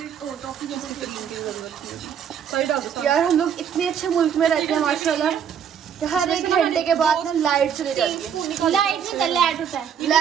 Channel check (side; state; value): left; quieter; 8.1 dB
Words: और टॉफी जैसे क्रीम की जरूरत है। सही डाल दो। यार हम लोग इतने अच्छे मुल्क में रहते हैं माशाल्लाह, कि हर एक घंटे के बाद ना लाइट चली जाती है। लाइट नहीं, लैट होता है।